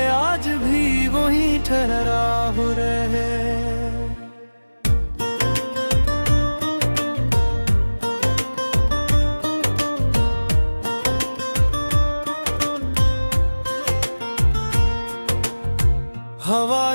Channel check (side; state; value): both; inverted; correlation -1.00